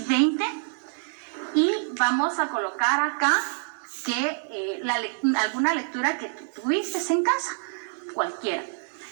y vamos a colocar acá que alguna lectura que tú tuviste en casa, cualquiera,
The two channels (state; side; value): silent; left; digital silence